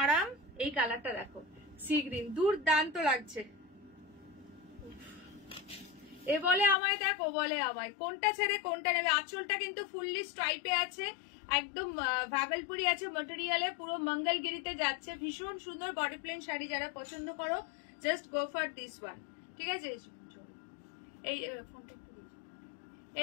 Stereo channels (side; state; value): right; drops out; at 6.8 s